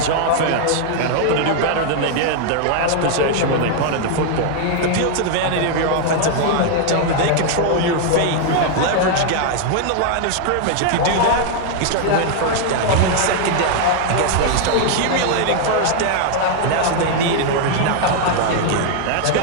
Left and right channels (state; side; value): different; both; correlation 0.00